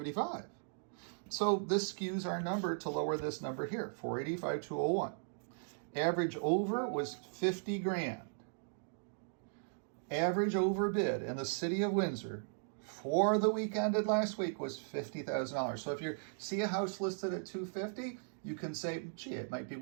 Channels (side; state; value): left; silent; digital silence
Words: So this skews our number to lower this number here, $485,201. Average over was 50 grand. Average overbid in the city of Windsor for the week ended last week was $50,000. So if you see a house listed at $250, you can say, gee, it might be